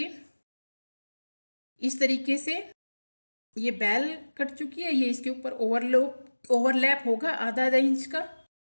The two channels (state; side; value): inverted; both; correlation -1.00